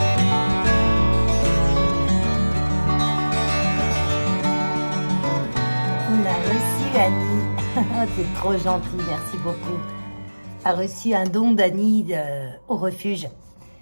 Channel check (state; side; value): inverted; both; correlation -1.00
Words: C'est trop gentil, merci beaucoup. A reçu un don d'Annie au refuge.